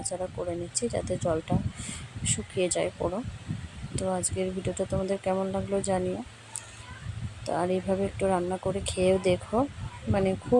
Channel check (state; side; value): identical; both; correlation 1.00